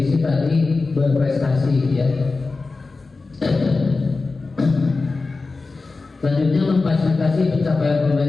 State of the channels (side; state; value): right; quieter; 3.8 dB